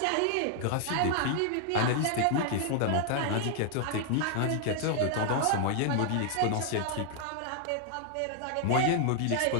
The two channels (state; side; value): different; both; correlation 0.00